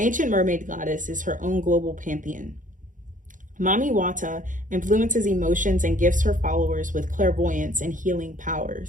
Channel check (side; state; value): left; late; 0.38 ms